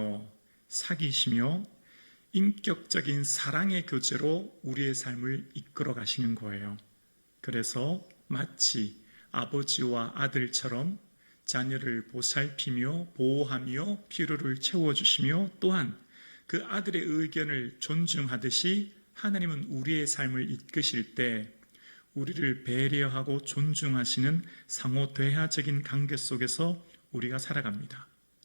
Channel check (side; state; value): both; inverted; correlation -1.00